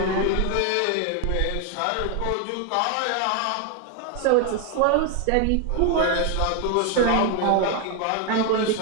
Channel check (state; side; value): different; both; correlation 0.01